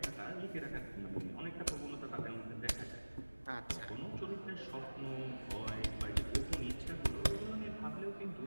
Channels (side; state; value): both; inverted; correlation -1.00